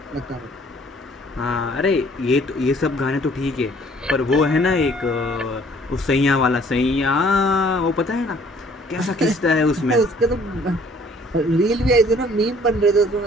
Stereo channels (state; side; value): normal; both; correlation 0.58